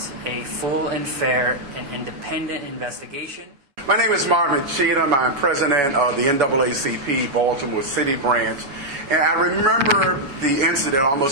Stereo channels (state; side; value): late; left; 7.1 ms